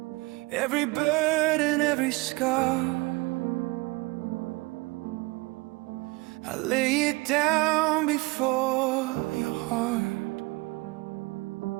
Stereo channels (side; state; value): left; quieter; 24.2 dB